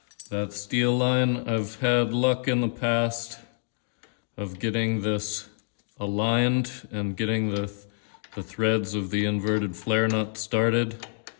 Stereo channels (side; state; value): right; silent; digital silence